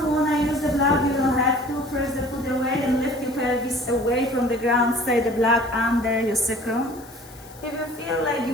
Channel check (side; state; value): left; noise; hiss, 22 dB below the sound